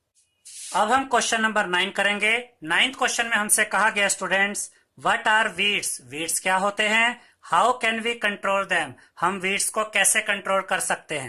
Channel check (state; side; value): identical; both; correlation 1.00